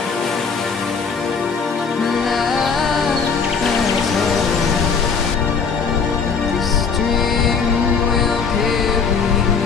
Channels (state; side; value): quieter; right; 5.6 dB